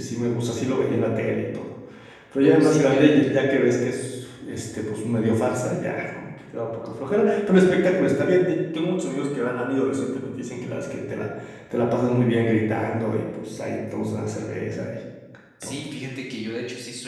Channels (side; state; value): both; identical; correlation 1.00